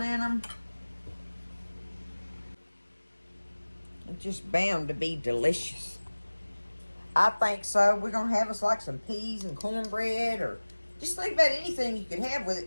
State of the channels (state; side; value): inverted; both; correlation -1.00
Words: in them. It's just bound to be delicious. I think so. We're going to have us like some peas and cornbread, or just think about anything you could have with